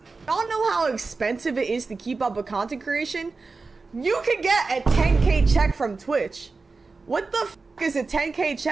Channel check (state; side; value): quieter; left; 4.1 dB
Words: Y'all know how expensive it is to keep up with content creation? You could get a 10K check from Twitch. What the f is a 10K